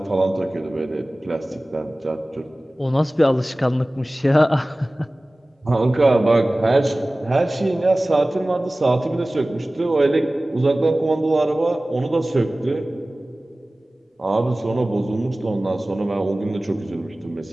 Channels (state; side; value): normal; both; correlation 0.98